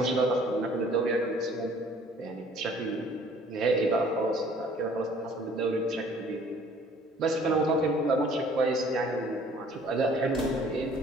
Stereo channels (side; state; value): both; normal; correlation 0.55